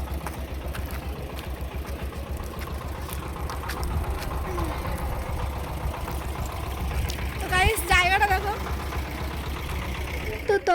তো গাইস জায়গাটা দেখো। তো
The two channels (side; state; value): both; identical; correlation 1.00